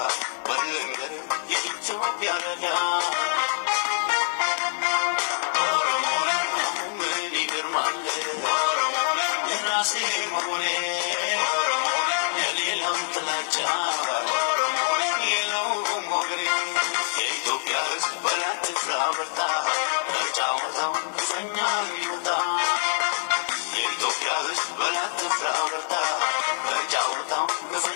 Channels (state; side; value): silent; right; digital silence